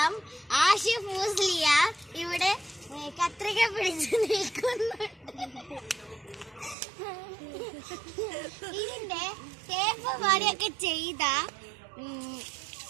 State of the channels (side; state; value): left; drops out; at 6.8 s